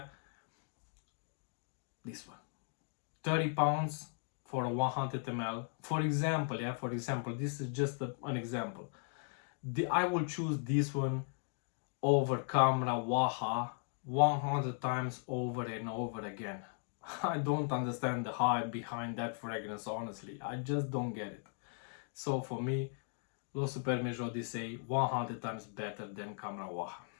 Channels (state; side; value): silent; right; 53 dB below the other